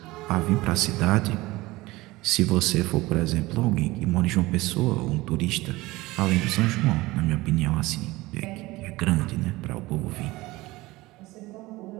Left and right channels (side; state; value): left; quieter; 20.1 dB